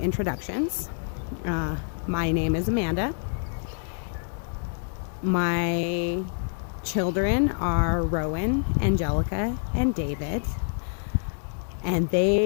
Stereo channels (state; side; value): silent; right; 60 dB below the other